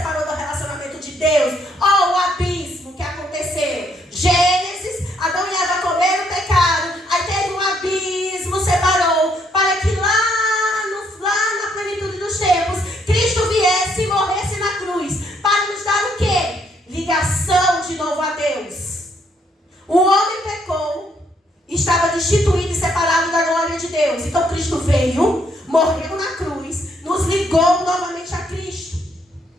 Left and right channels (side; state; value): both; normal; correlation 0.71